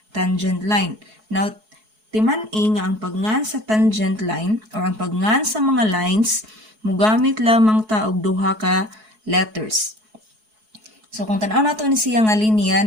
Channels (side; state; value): left; late; 4.7 ms